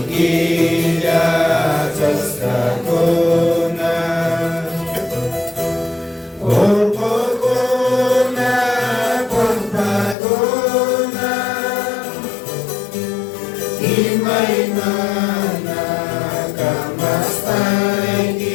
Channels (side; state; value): right; drops out; at 10.2 s